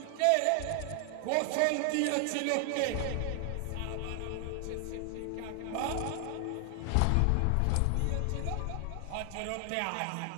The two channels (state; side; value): different; both; correlation 0.00